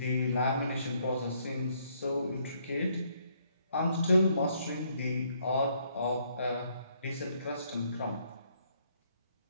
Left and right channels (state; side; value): inverted; both; correlation -0.70